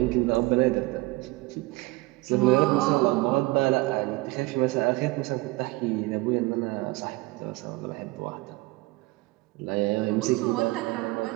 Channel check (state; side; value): quieter; left; 22.4 dB